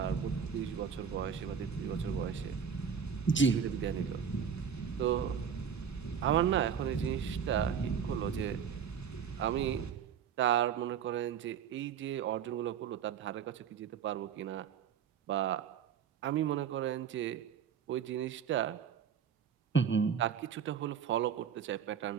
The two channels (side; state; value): left; quieter; 7.6 dB